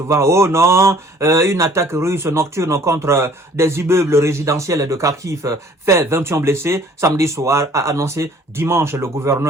oh non, une attaque russe nocturne contre des immeubles résidentiels de Kharkiv fait 21 blessés. Samedi soir, a annoncé dimanche le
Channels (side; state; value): both; normal; correlation 0.55